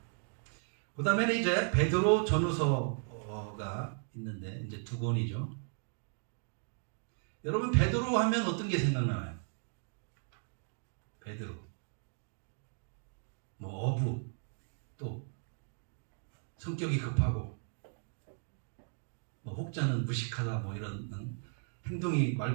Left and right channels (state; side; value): silent; left; 54 dB below the other